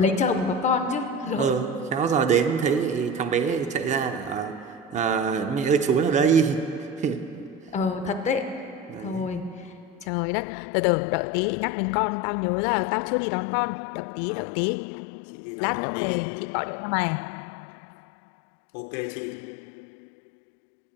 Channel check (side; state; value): right; drops out; at 10.1 s